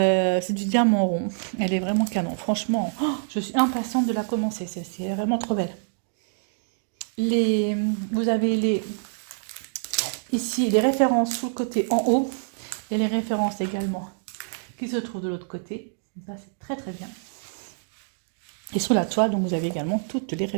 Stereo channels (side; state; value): left; silent; digital silence